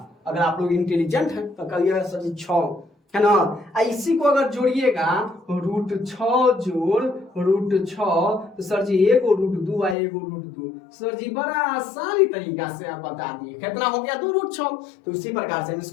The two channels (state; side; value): drops out; right; at 10.0 s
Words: अगर आप लोग इंटेलिजेंट हैं तो करिएगा सर जी 6 है ना। इसी को अगर जोड़िएगा रूट 6 जोड़ रूट 6 तो सर जी एगो रूट 2 और एगो रूट 2, सर जी बड़ा आसानी तरीका से आप बता दिए कितना हो गया 2 रूट 6। तो इसी प्रकार से हम